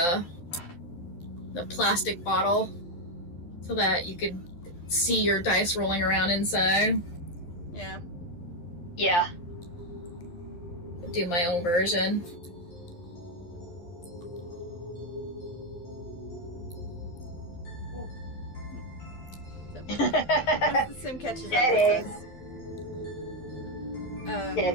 plastic bottle so that you could see your dice rolling around inside. Yeah. Yeah. Do my own version. So, once the sim catches up Get with it. us,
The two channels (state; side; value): late; right; 12 ms